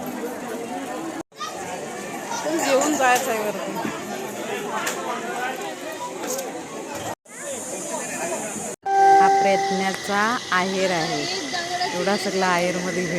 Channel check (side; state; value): both; identical; correlation 1.00